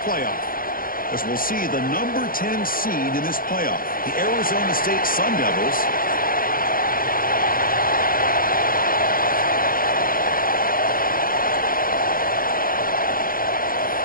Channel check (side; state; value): right; late; 0.41 ms